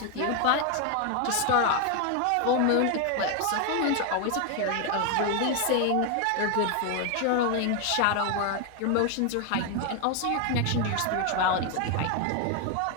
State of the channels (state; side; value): different; both; correlation 0.01